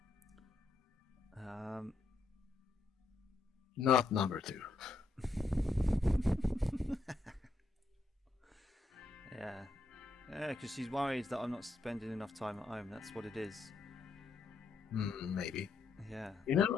Not number 2. Yeah, because she's worried that I'm not spending enough time at home. That's what it is. Maybe. Yeah. You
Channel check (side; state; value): right; quieter; 3.4 dB